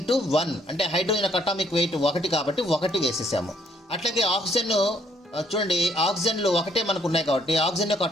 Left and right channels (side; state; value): both; normal; correlation 0.67